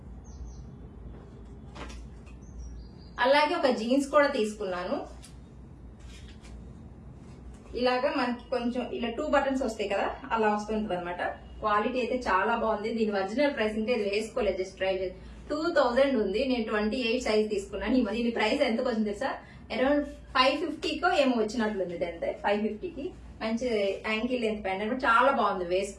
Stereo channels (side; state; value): both; identical; correlation 1.00